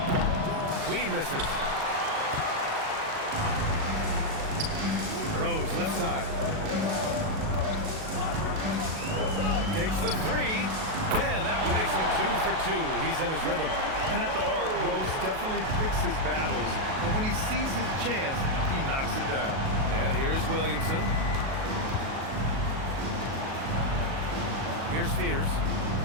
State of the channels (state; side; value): late; left; 37 ms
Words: Queen misses. Rose left side. Takes the 3. And that one makes him 2 for 2. He's in his rhythm. And at the arc, Rose definitely picks his battles, but when he sees his chance, he knocks it down. And here's Williamson. Here's Fears.